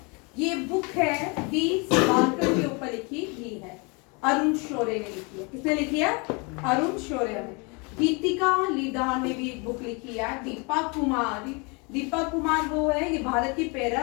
ये बुक है डी सावरकर के ऊपर लिखी ही है, अरुण शौर्य ने लिखी है। किसने लिखी है? अरुण शौर्य ने। गीतिका लीदार ने भी एक बुक लिखी है। दीपक कुमार वो है, ये भारत की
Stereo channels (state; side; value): quieter; right; 31.0 dB